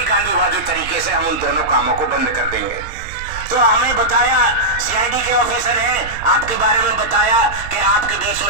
गांधीवादी तरीके से हम उन दोनों कामों को बंद कर देंगे। तो हमें बताया, सीआईडी के ऑफिसर हैं, आपके बारे में बताया कि आपके बीच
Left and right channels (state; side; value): noise; right; rumble, 13 dB below the sound